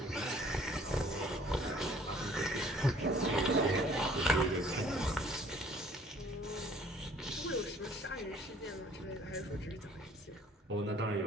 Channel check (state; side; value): normal; both; correlation 0.56